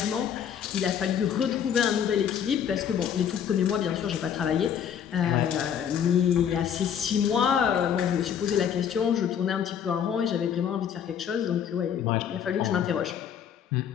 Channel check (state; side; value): quieter; right; 8.5 dB